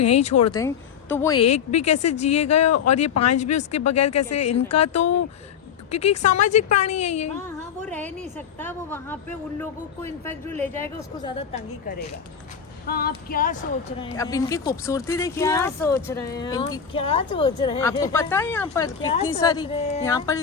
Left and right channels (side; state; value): right; quieter; 7.5 dB